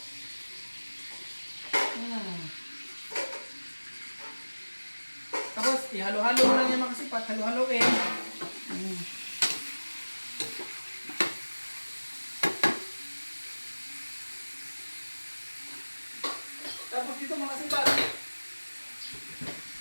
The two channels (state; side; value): inverted; both; correlation -1.00